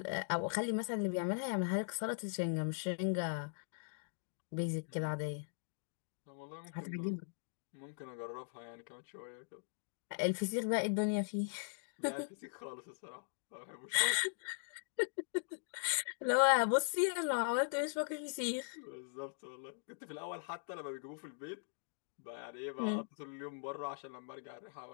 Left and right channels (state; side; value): silent; right; digital silence